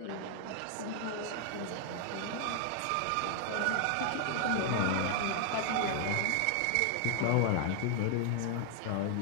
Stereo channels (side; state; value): both; different; correlation 0.00